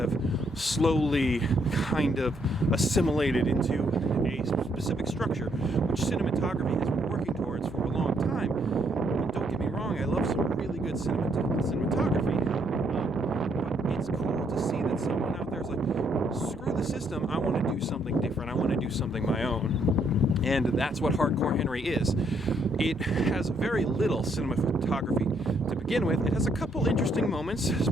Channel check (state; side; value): normal; both; correlation 0.72